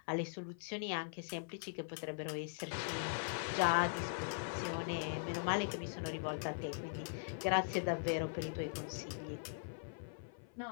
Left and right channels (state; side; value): silent; right; 50 dB below the other